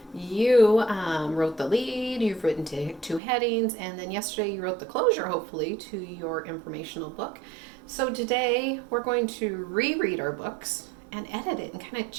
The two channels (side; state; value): left; drops out; at 3.2 s